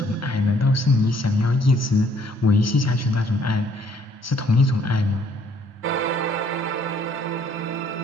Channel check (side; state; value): both; normal; correlation 0.63